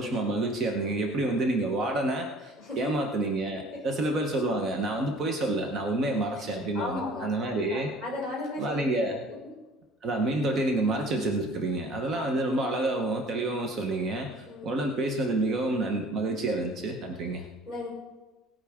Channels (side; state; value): both; normal; correlation 0.50